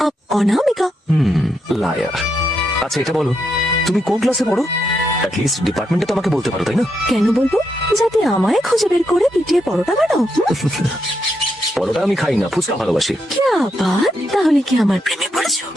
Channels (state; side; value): normal; both; correlation 0.81